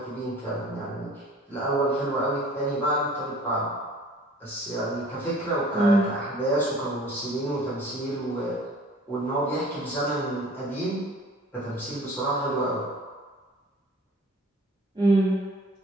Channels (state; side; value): normal; both; correlation 0.48